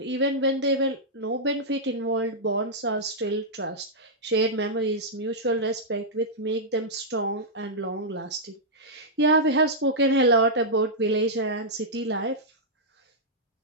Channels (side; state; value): both; normal; correlation -0.09